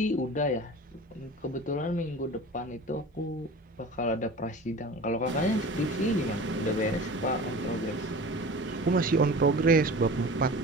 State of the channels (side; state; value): both; normal; correlation 0.37